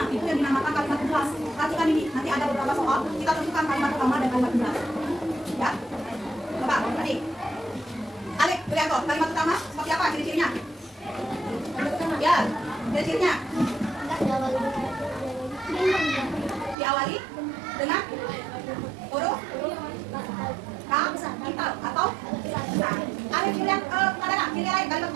itu yang dinamakan kalimat penjelas. Perhatikan ini, nanti ada beberapa soal kita tentukan kalimat utama dan kalimat penjelas. Ya, coba tadi. Alek, lihat kok, kalimat utama seperti apa ciri-cirinya? Ya, ciri-cirinya diawali dengan huruf kapital atau besar. Alek, lihat ada nggak ciri lain kalimat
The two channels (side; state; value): left; drops out; at 16.8 s